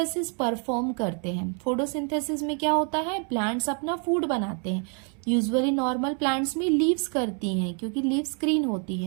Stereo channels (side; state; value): left; quieter; 39.7 dB